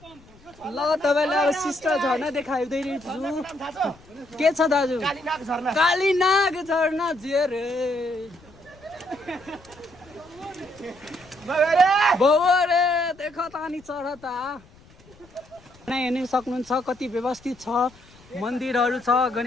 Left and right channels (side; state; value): left; noise; rumble, 26 dB below the sound